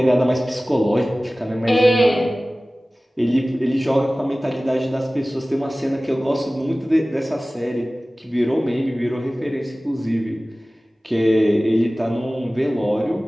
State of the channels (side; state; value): both; normal; correlation 0.97